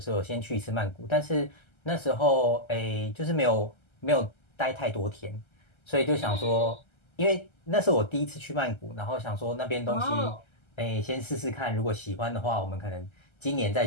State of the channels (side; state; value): right; late; 1.3 ms